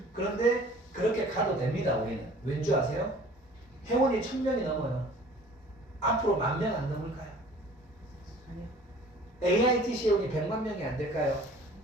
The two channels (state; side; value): normal; both; correlation 0.49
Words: 그런데 그렇게 가도 됩니다 우리는. 왠지 아세요? 회원이 1,000명이 넘어요. 앞으로 10,000명 안 넘을까요? 아니요. AIT 회원이 100만 명이 안 될까요?